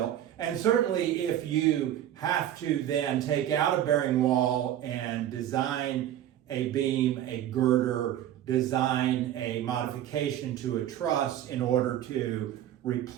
And certainly if you have to then take out a bearing wall and design a beam, a girder, design a modification to a truss in order to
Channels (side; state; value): left; quieter; 11.6 dB